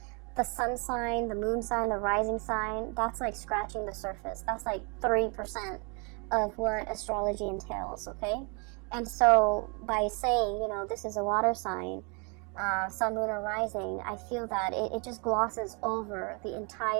sun sign, the moon sign, the rising sign. That's like scratching the surface. That's like 3% of what astrology entails, okay? And so by saying, you know, this is a water sign, sun, moon, or rising, I feel that it just glosses over the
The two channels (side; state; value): left; quieter; 34.1 dB